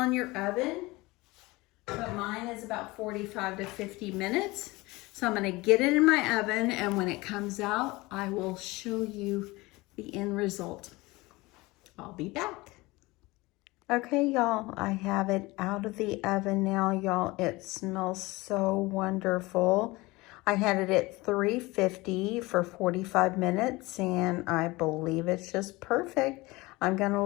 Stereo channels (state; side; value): quieter; right; 21.9 dB